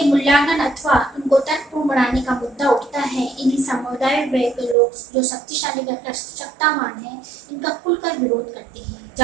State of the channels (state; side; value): drops out; left; at 4.8 s